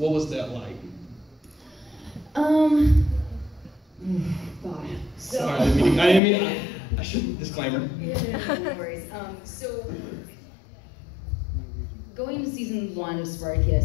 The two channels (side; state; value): right; drops out; at 6.2 s